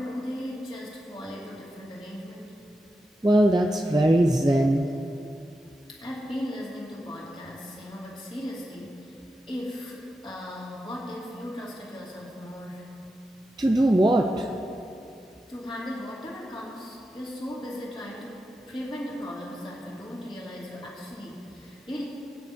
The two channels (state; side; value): normal; both; correlation 0.89